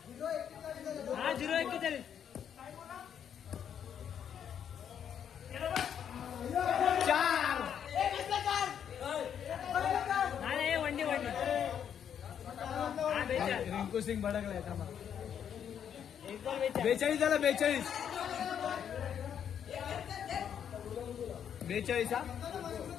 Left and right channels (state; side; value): quieter; right; 8.6 dB